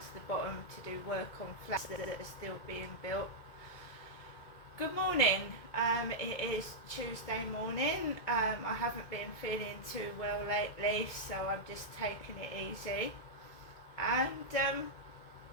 the bottom to do work on flats that are still being built. Good morning. It is Tuesday morning. I haven't been feeling too well lately, so I'm just taking it easy. And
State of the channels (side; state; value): right; late; 2.2 ms